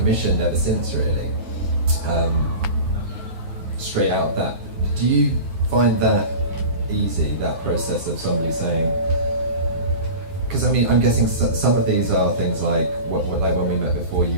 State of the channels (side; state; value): left; late; 9.5 ms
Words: ever since, really. Straight out of that, do you find that easy, that process of somebody saying? Because I'm guessing some of these are things like like when we met before,